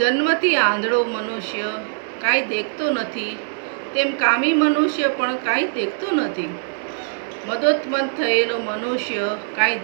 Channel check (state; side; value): silent; left; digital silence